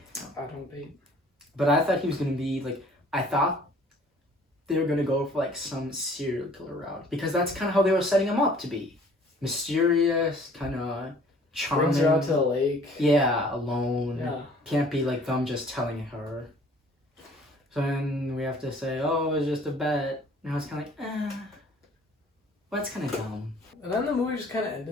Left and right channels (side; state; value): both; normal; correlation 0.54